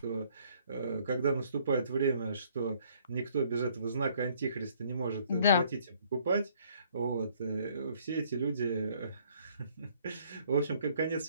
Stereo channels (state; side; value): inverted; both; correlation -0.62